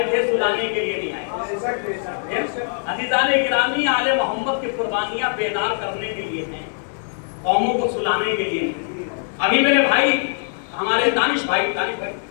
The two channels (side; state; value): right; silent; digital silence